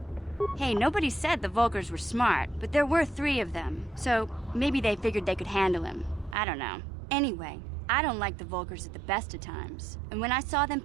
Hey, nobody said the Vulkars were smart, but there were 3 of them, so maybe they figured they could handle him. I don't know. Anyway, I don't like the Vulkars at the best of times, and when I saw them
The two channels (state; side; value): drops out; left; at 6.4 s